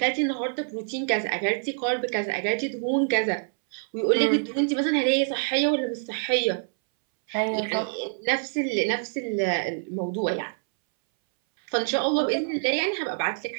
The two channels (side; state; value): left; silent; 61 dB below the other